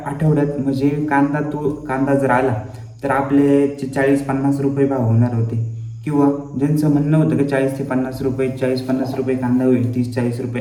आठवड्यात, म्हणजे कांदा जर आला तर आपले 40-50 रुपये भाव होणार होते, किंवा ज्यांचं म्हणणं होतं की 40 ते 50 रुपये, 40-50 रुपये कांदा होईल, 30-40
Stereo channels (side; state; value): both; identical; correlation 1.00